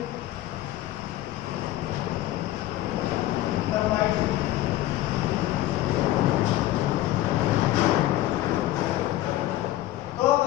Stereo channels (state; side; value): quieter; right; 15.0 dB